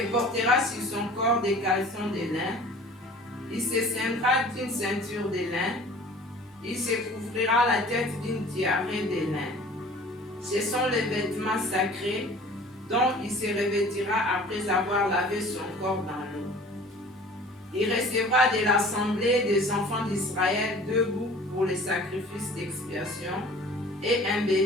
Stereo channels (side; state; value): both; normal; correlation 0.46